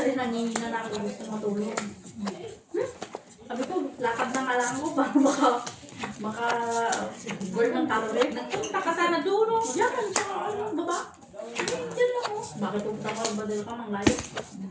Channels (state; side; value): identical; both; correlation 1.00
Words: nangihina na ako gusto matulog. Sabi ko, lakad na nga lang ako para maka burn ng calorie. Nagpunta ka sana doon, no? Diyan, sa baba. Diyan lang ako. Bakit pupunta ka ba dito ka mang layo?